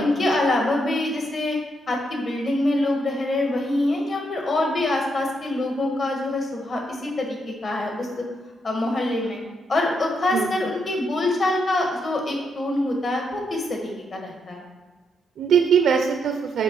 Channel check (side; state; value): both; normal; correlation 0.78